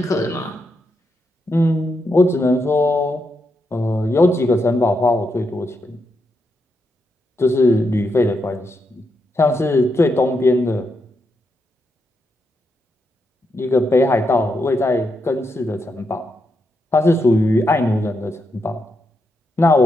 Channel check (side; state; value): both; normal; correlation 0.83